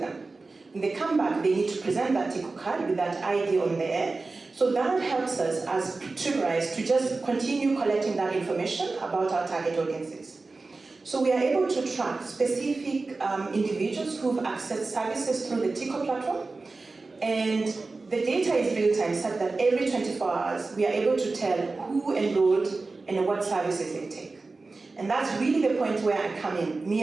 When they come back, they need to present that TICO card with that ID on there. So that helps us as Triggerise to just continue collecting that information about our target audiences. So we are able to track specific individuals who've accessed services through the TICO platform, and the data is real-time, such that every 24 hours we are able to tell who enrolled and what services they take. And that's really the point where I come in, me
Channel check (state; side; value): quieter; left; 3.7 dB